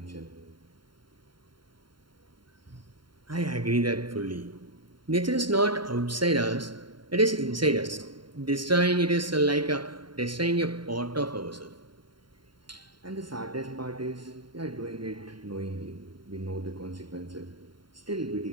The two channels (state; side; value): late; left; 0.72 ms